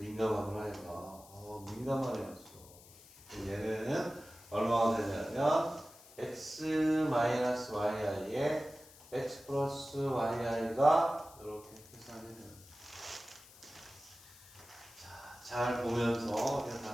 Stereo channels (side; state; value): left; noise; hiss, 21 dB below the sound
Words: 얘가. 민감하네였어. 얘는 얼마가 되냐면 x-yi에 x 플러스 yi가 이렇게 계산이 돼요. 자, 잘 보면서